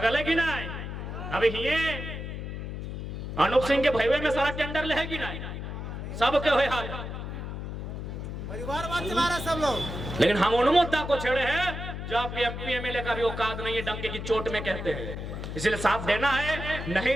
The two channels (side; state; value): left; noise; hum, 6 dB below the sound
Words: है कि नहीं। अभी ये अनूप सिंह के भैवे में सारा टेंडर ले है कि नहीं, सबके हुए हाल परिवारवाद चला रहे सब लोग। लेकिन हम उन मुद्दा को छेड़े हैं जो आपके एमपी एमएलए का भी औकात नहीं है, डंके की चोट में कहते हैं। इसलिए साथ देना है नहीं